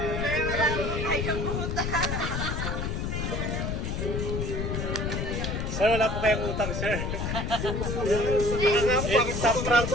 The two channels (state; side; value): noise; left; rumble, 2 dB below the sound